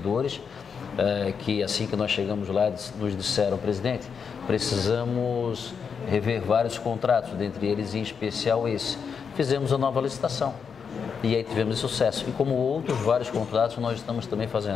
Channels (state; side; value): quieter; right; 6.3 dB